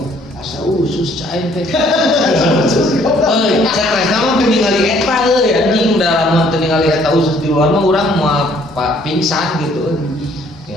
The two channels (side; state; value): both; normal; correlation 0.62